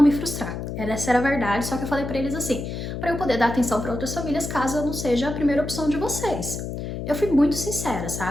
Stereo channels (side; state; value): left; noise; hum, 6 dB below the sound